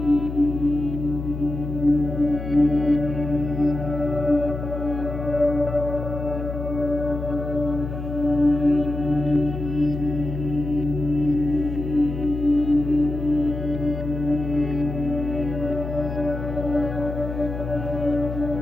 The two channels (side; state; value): left; noise; hum, 6 dB below the sound